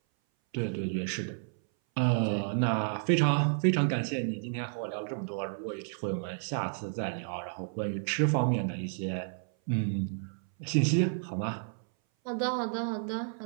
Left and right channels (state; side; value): silent; left; 57 dB below the other